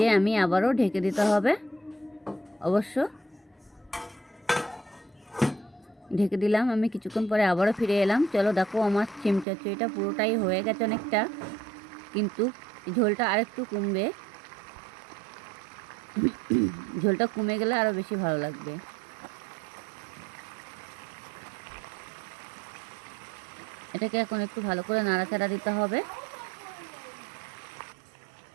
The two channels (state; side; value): drops out; left; at 9.5 s